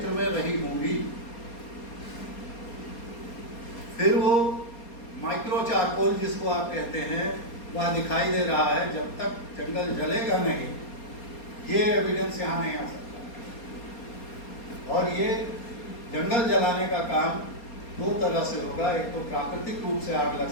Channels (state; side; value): late; right; 4.3 ms